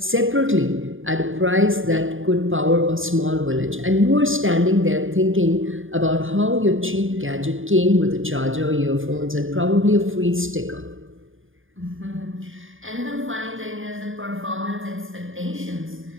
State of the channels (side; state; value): left; late; 0.58 ms